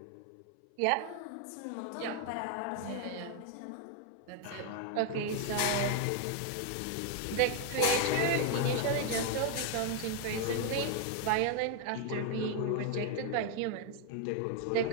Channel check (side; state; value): both; different; correlation 0.01